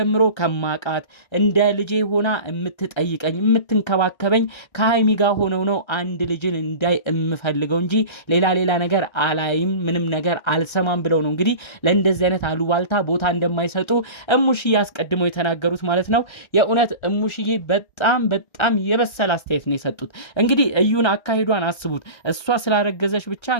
ከማቃት እንደ ልጄ ሆና የምትጠይቀኝ የምትንከባከበኝ ከሀይሚ ጋር ሆነው ነው አንድ ልጅን እንዳይ የምፈልገው እንጂ ሌላ ነገር አላይም፣ ምንም ነገር አልሰማም ብለው ነው እንግዲህ ለእንደዚህ አይነት አሉባልታ ቦታ እንደማይሰጡ እሙሽዬ አስቀድመው የተናገሩት ማለት ነው። የእውነት እሙሽዬ በጣም የበሰለ አስተያየት ነው የሰጡት። እንግዲህ እዩን አካሂዷን አስቡት። እሷ ስላረገዘች ብቻ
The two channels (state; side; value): late; right; 1.3 ms